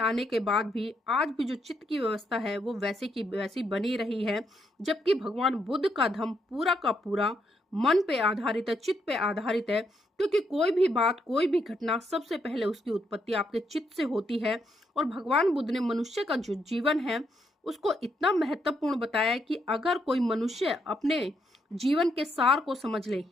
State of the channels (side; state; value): both; normal; correlation 0.77